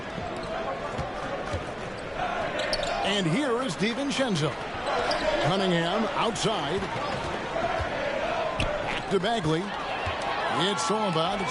And here is DiVincenzo. Cunningham outside. Back to Bagley. It's Solomon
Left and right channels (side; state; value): both; identical; correlation 1.00